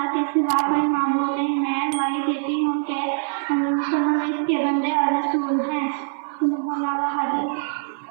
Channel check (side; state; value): left; silent; 56 dB below the other